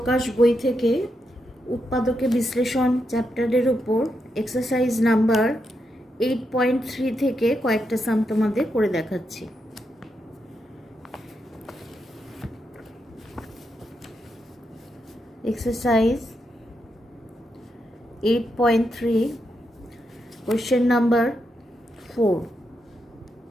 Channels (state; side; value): normal; both; correlation 0.83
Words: বই থেকে উৎপাদকে বিশ্লেষণ চ্যাপ্টারের উপর এক্সারসাইজ নাম্বার 8.3 থেকে কয়েকটা সাম তোমাদের করে দেখাচ্ছি। Exercise 8.3 question number 4।